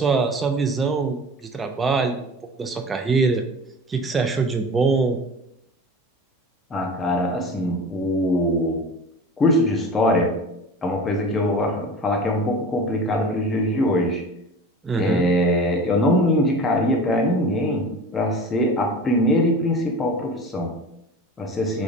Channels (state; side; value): normal; both; correlation 0.35